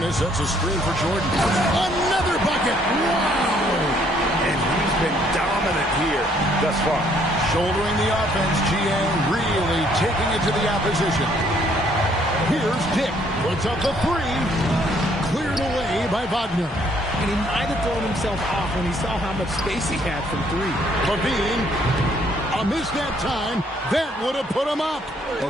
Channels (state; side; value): normal; both; correlation 0.65